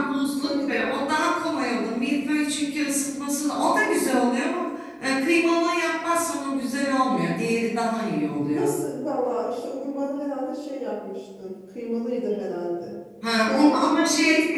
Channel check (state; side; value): identical; both; correlation 1.00